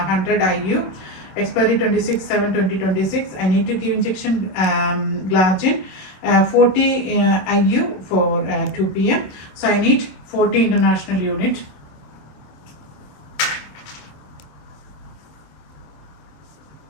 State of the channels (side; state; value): right; late; 26 ms